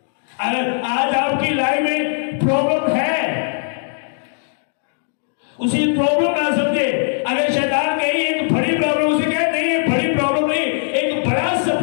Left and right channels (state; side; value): silent; right; digital silence